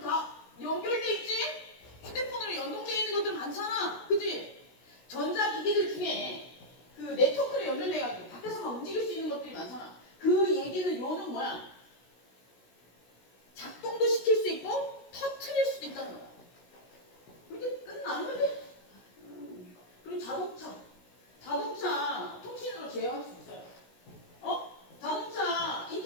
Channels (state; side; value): late; right; 16 ms